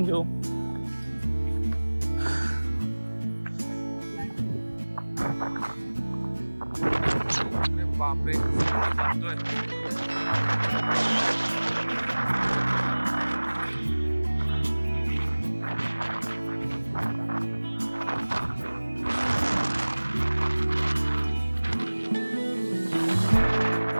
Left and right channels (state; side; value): inverted; both; correlation -1.00